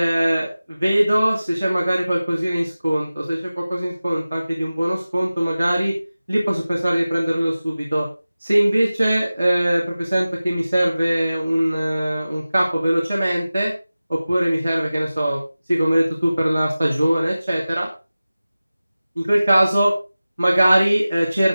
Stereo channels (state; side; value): inverted; both; correlation -0.96